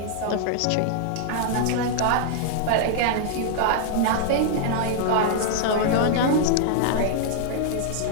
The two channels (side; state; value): both; different; correlation -0.01